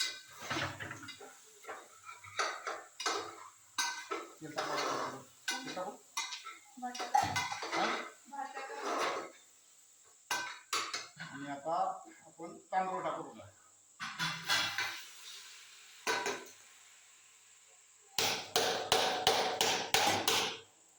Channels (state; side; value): identical; both; correlation 1.00